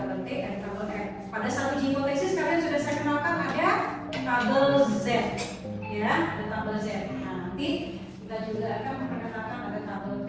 T dan tabel F. Pada saat uji hipotesis kalian sudah saya kenalkan ada tabel Z, ya, ada tabel Z. Nah, nanti kita juga akan memperkenalkan ada tabel T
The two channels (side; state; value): both; identical; correlation 1.00